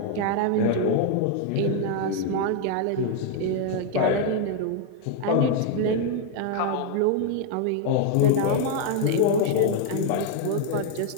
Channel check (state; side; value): different; both; correlation 0.00